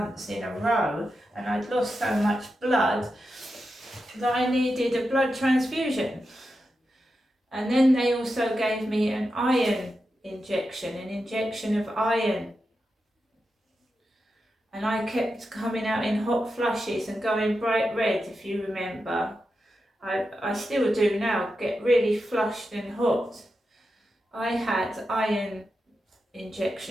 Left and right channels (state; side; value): normal; both; correlation 0.89